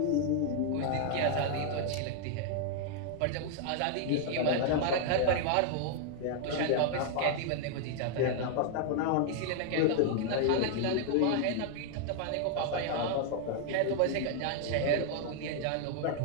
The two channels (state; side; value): different; both; correlation 0.00